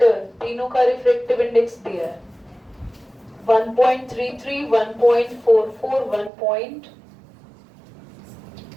तीनों का रिफ्रैक्टिव इंडेक्स दिया है 1.33, 1.44, 1.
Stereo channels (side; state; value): left; drops out; at 6.3 s